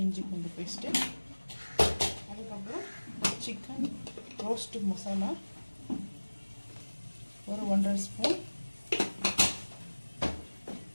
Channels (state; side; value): inverted; both; correlation -1.00